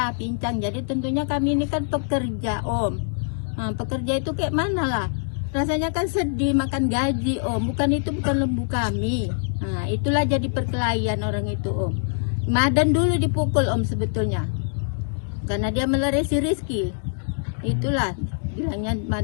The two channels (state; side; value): silent; right; digital silence